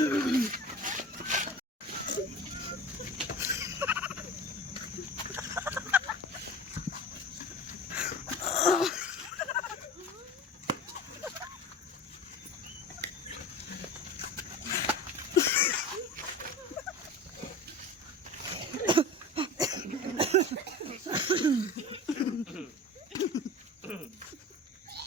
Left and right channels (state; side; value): normal; both; correlation 0.34